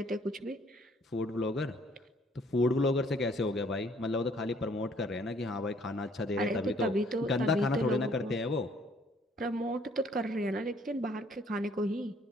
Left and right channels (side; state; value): both; normal; correlation 0.62